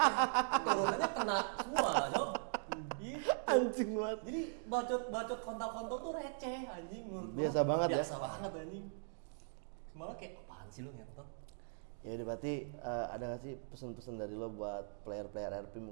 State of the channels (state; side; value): silent; left; digital silence